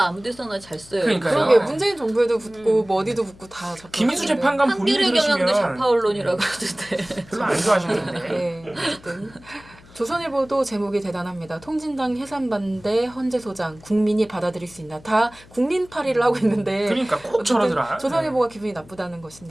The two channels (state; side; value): noise; left; hum, 23 dB below the sound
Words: 아무데서나 잘 써요. 그러니까요. 그러게 문재인 정부에도 붙고 뭐 어디도 붙고 다 좌파. 김희수 재판관 본인이 한겨레 경향도 들으시면 좌파 언론이라고 그러던데. 별로 안 좋아하시는데. 네, 어쨌든 조선일보도 제목이 대단합니다. 통진당 해산 반대 헌재 소장 국민이 받아들일 수 있나. 다 국민파리를 하고 있는데 그러니까 꼭 저러더라. 조선일보가 기분이 나쁘다는